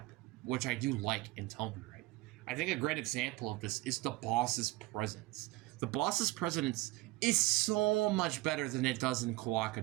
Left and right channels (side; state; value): left; quieter; 19.4 dB